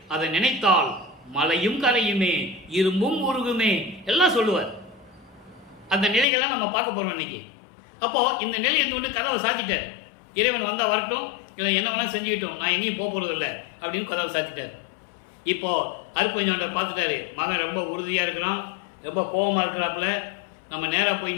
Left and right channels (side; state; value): right; drops out; at 6.2 s